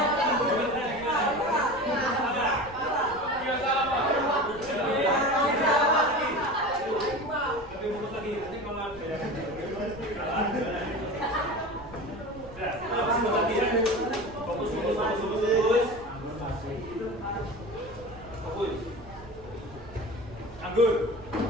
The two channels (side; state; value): right; noise; rumble, 19 dB below the sound